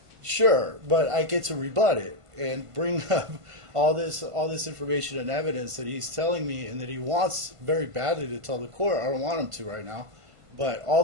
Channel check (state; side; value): late; left; 1.5 ms